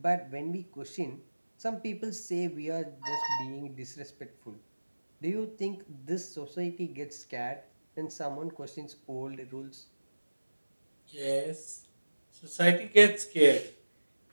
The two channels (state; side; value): inverted; both; correlation -1.00